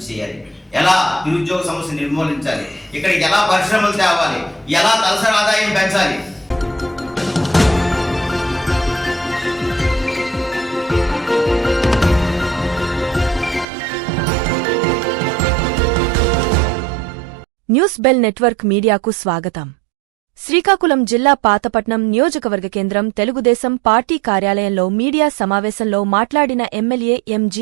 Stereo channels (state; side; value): drops out; left; at 13.7 s